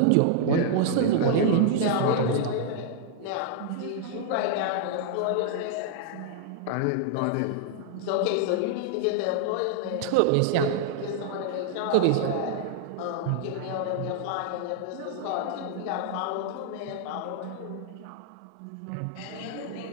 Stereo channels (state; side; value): different; both; correlation 0.00